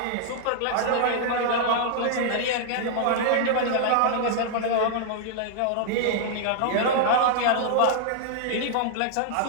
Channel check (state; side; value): different; both; correlation -0.01